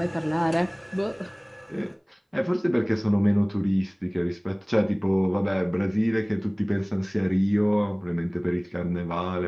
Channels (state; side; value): identical; both; correlation 1.00